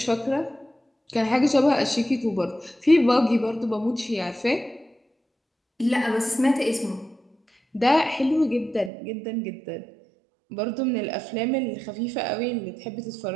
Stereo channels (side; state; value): left; drops out; at 8.9 s